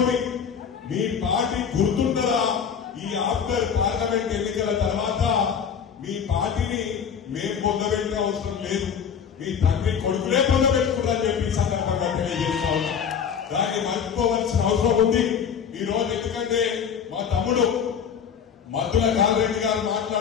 మీ పార్టీ గుర్తుండదా? ఈ ఆఫ్టర్ పార్లమెంట్ ఎన్నికల తర్వాత మీ పార్టీని మేము పొందబెట్టిన అవసరం లేదు, మీ తండ్రి కొడుకులే పొందబెట్టుకున్నారని చెప్పి సందర్భంగా తెలియజేస్తా ఉన్నా. దాన్ని మర్చిపోవలసిన అవసరం ఉంది ఈ రోజు. ఎందుకంటే మా తమ్ముడు మద్దుల కాంతిరెడ్డి గారు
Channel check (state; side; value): quieter; right; 7.4 dB